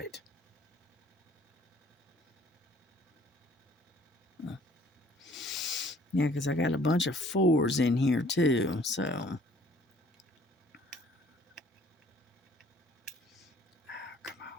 Yeah, because I got a bunch of 4s in here too, so. Come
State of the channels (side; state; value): both; normal; correlation 0.57